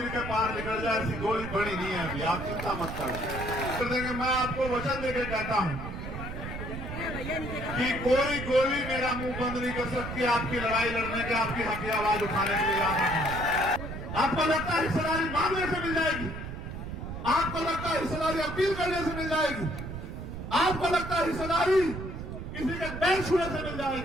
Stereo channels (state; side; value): noise; right; rumble, 7 dB below the sound